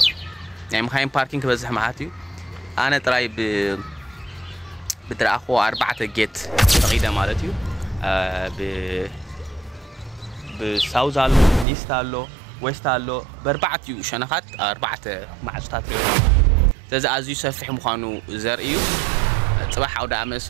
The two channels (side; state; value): left; drops out; at 11.7 s